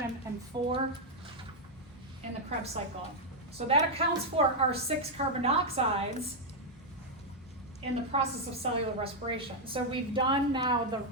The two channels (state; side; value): normal; both; correlation -0.01